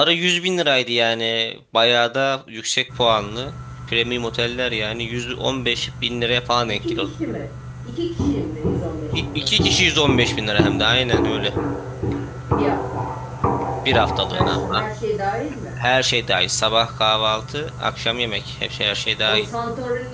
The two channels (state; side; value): identical; both; correlation 1.00